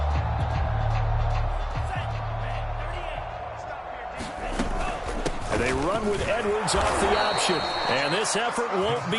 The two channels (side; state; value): both; identical; correlation 1.00